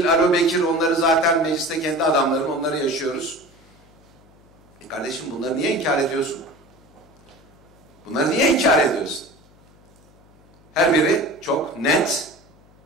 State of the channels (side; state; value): left; noise; hum, 28 dB below the sound